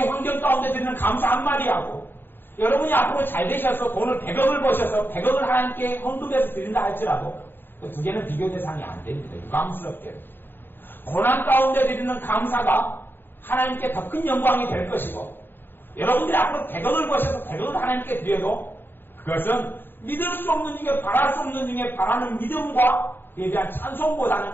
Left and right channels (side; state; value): right; late; 0.097 ms